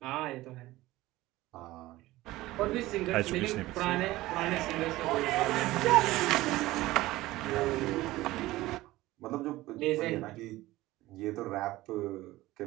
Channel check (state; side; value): quieter; left; 17.7 dB